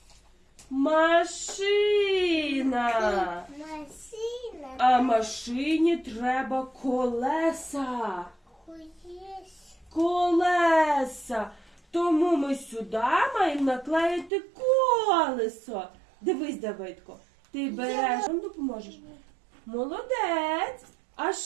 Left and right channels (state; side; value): drops out; left; at 14.3 s